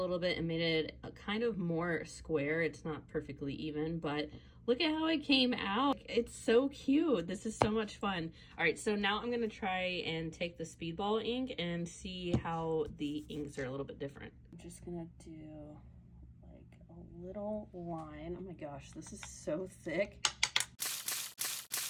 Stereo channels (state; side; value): identical; both; correlation 1.00